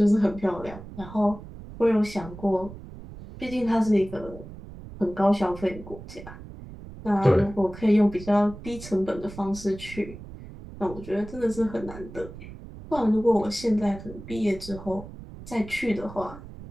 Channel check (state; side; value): noise; right; rumble, 14 dB below the sound